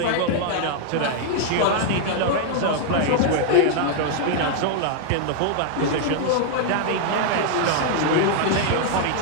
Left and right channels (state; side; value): different; both; correlation 0.00